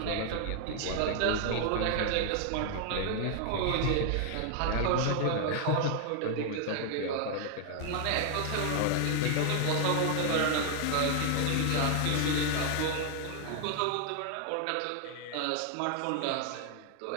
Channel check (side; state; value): both; different; correlation 0.00